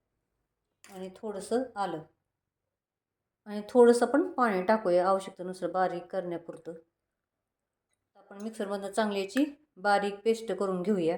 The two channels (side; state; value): both; identical; correlation 1.00